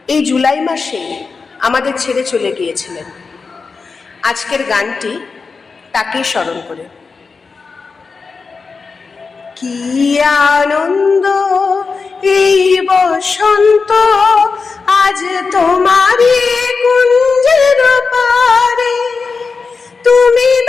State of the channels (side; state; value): right; quieter; 4.7 dB